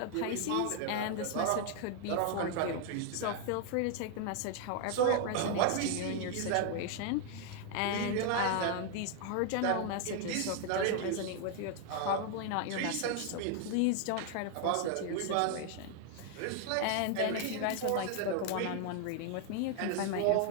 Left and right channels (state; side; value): different; both; correlation 0.00